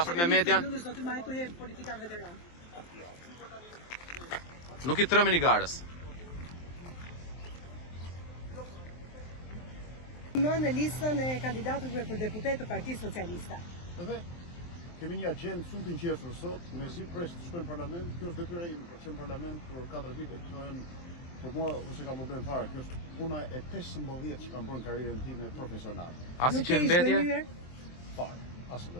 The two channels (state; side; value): late; right; 23 ms